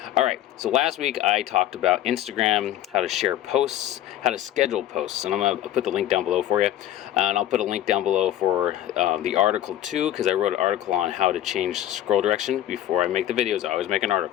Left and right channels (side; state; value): right; quieter; 12.5 dB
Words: Alright, so last week I talked about Instagram, how to share posts, how to schedule posts, and I'm going to put the link down below for you. And I'll put a link down below for the article too, because I wrote an article on how to change scroll direction. Before I make the videos, I always make an